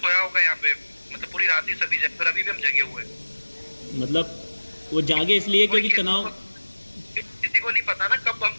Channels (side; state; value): both; inverted; correlation -1.00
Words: होगा यहाँ पे, मतलब पूरी रात ही सभी जगे, और अभी भी हम जगे हुए। मतलब वो जागे इसलिए क्योंकि तनाव, किसी को नहीं पता ना कब